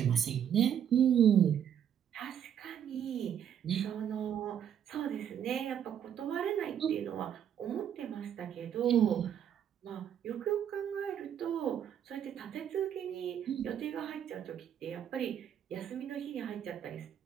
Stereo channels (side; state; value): left; quieter; 9.2 dB